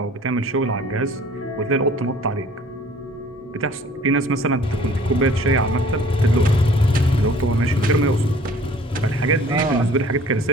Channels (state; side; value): normal; both; correlation 0.52